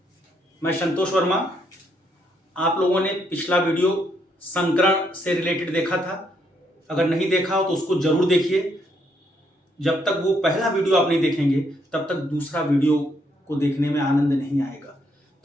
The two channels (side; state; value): both; normal; correlation 0.74